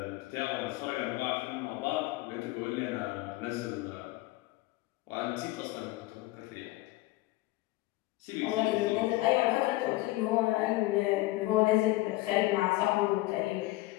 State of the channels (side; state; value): right; quieter; 18.5 dB